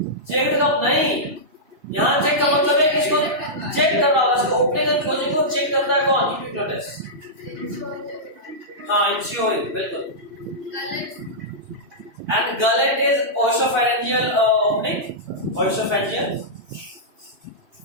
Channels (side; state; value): left; late; 2.9 ms